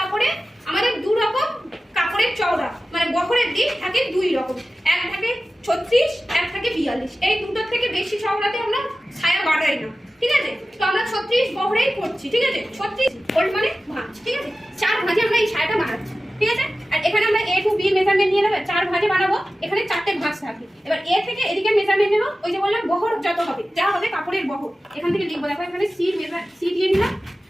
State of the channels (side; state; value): both; normal; correlation 0.95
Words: আমাদের দু রকম কাপড়ের চওড়া মানে বহরের দিক থাকে দুই রকম এক থাকে 36 এক থাকে 42 এই দুটোর থেকে বেশি চওড়াতে আমরা সায়া বাড়াই না ঠিক আছে তো আমরা 36 বহরেই করছি ঠিক আছে 36 ফোল্ড মানে ভাঁজ ঠিক আছে চার ভাঁজে আমরা এই সায়াটা বানাচ্ছি ঠিক আছে আর এখানে আমরা a to b মেজারমেন্ট নিয়ে নেব চার ভাঁজে বানাবো এখানে চারটে ভাঁজ থাকে এবার a থেকে এদিকে মেজারমেন্ট নেব ওই যে বললাম বহর যত হবে যা হবে কাপড়ের বহর এখান থেকে লিখবো দেখো এখানে c দিয়ে নিলাম